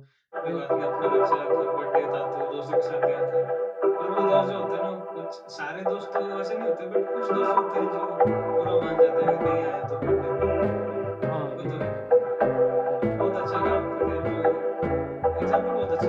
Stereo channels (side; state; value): both; identical; correlation 1.00